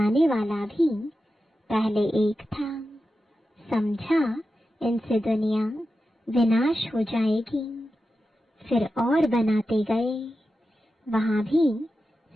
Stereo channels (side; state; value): both; normal; correlation 0.91